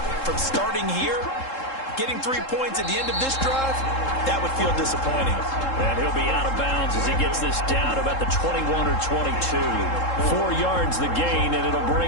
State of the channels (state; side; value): late; right; 3.7 ms